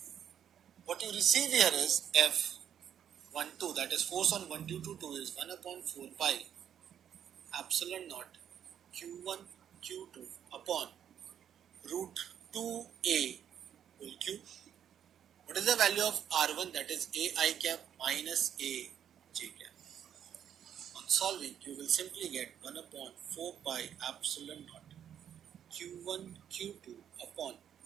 What you receive here is F12, that is force on 1 2 2 is 1 upon 4 pi epsilon naught Q1 Q2 upon root 2A whole cube. What is the value of R1? That is A I cap minus A J cap. On solving, you will simply get 1 upon 4 pi epsilon naught Q1 Q2 upon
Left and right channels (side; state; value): left; quieter; 9.3 dB